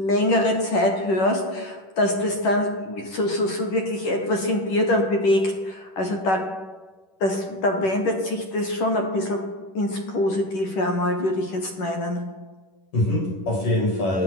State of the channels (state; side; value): late; right; 10 ms